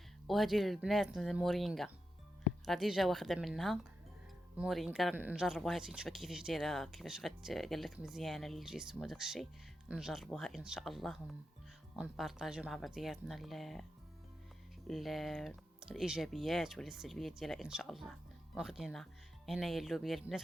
وهذه البنات المورينغا راه ديجا واخده منها مورينغا، نجربوها نشوف كيفاش دايره، كيفاش قال لك مزيانه للجسم وداك الشيء. نجربوها ان شاء الله ونبارطاجيو مع بعضياتنا ال... الايجابيات ولا السلبيات ديالها ان شاء الله. واخدينها هنايا اللوبيا البنات،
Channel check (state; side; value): normal; both; correlation 0.88